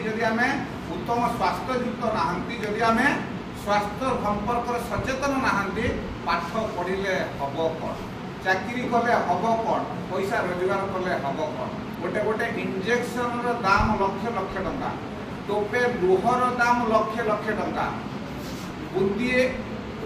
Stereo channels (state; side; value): identical; both; correlation 1.00